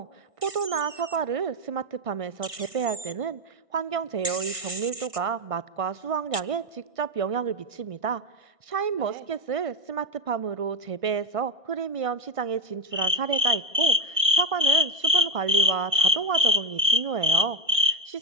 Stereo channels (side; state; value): left; late; 1.6 ms